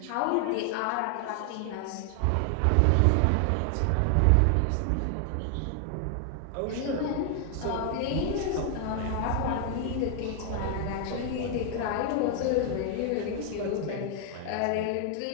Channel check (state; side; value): different; both; correlation 0.00